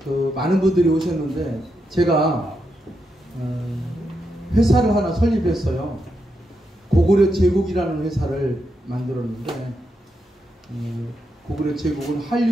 많은 분들이 오셨는데 제가 회사를 하나 설립했어요. 고구려 제국이라는 회사를 만들었는데 고구려 제국은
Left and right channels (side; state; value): both; normal; correlation 0.84